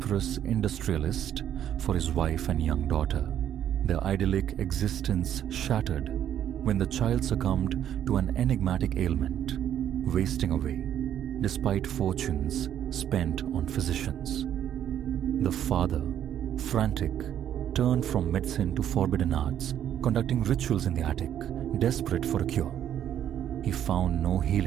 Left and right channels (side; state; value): left; quieter; 10.3 dB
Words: industrialist for his wife and young daughter, their idyllic existence shattered when the child succumbed to an enigmatic ailment, wasting away despite fortunes spent on physicians. The father, frantic, turned from medicine to forbidden arts, conducting rituals in the attic, desperate for a cure. He found no